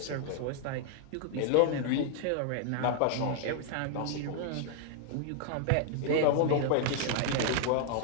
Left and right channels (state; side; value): different; both; correlation 0.00